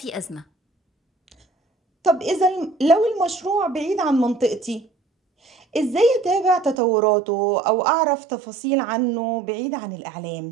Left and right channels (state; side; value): drops out; left; at 6.8 s